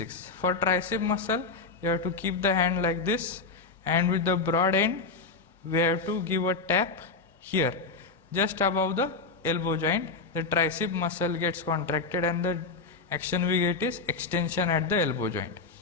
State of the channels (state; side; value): quieter; right; 4.1 dB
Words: For tricep muscle, you have to keep the hand like this, and with the broad end, we have to give a tap here, just above the elbow joint. The tricep muscle gets contracted and the action we get is extension at the elbow joint.